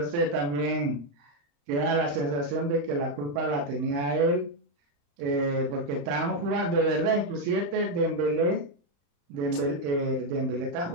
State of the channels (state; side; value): late; left; 35 ms